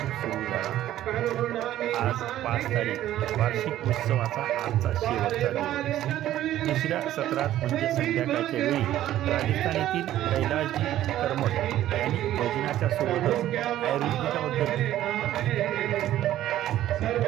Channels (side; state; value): left; quieter; 13.1 dB